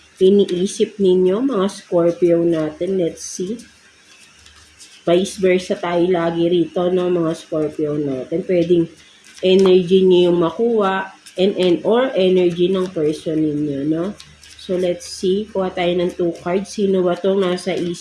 Iniisip ninyo, mga Scorpio natin. Let's see. Vice versa tayo lagi rito, no, mga Scorpio natin. Pwedeng energy niyo yung makuha or energy ng person ninyo, no? So, let's see. Kuha tayo ng 2 cards. Sino ba itong nasa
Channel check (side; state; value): both; identical; correlation 1.00